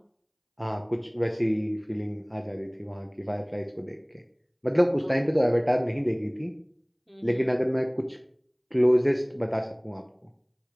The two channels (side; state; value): both; identical; correlation 1.00